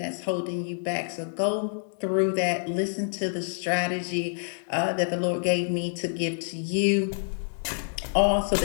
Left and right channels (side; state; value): right; silent; digital silence